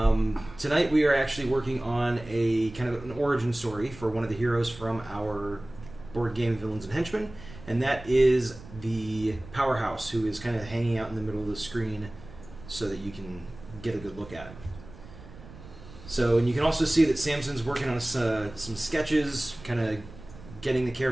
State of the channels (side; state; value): right; noise; rumble, 17 dB below the sound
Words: we are actually working on a kind of an origin story for one of the heroes from our board game Villains and Henchmen. And that is the Powerhouse, who is kind of hanging out in the middle of the screen so that you can get a good look at him. So, and you can also see that Samson's working on some sketches, kind of getting the